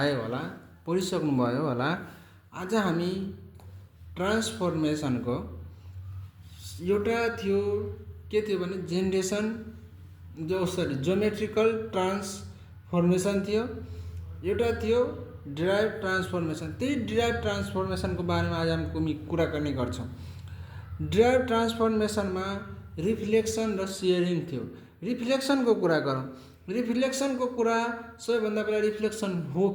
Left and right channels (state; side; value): identical; both; correlation 1.00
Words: होला, पढिसक्नुभयो होला। आज हामी ट्रान्सफर्मेसनको एउटा थियो, के थियो भने जेनरेसन ज्योमेट्रिकल ट्रान्सफर्मेसन थियो, एउटा थियो डिराइभ ट्रान्सफर्मेसन। त्यही डिराइभ ट्रान्सफर्मेसनको बारेमा आज हामी कुरा गर्ने गर्छौँ। डिराइभ ट्रान्सफर्मेसनमा रिफ्लेक्सन र सेयरिङ थियो। रिफ्लेक्सनको कुरा गरौँ। रिफ्लेक्सनको कुरा सबैभन्दा पहिला रिफ्लेक्सन हो